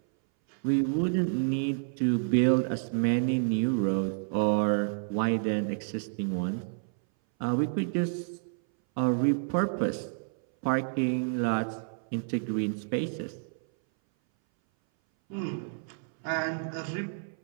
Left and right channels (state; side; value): silent; left; 58 dB below the other